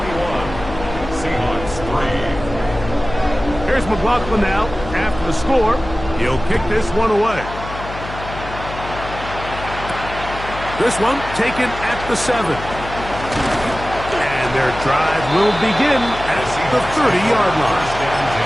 Seahawks 3. Here's McLaughlin now. After the score, he'll kick this one away. This one taken at the 7. And their drive will begin at the 30-yard line. First and 10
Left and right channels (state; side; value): noise; left; hum, 11 dB below the sound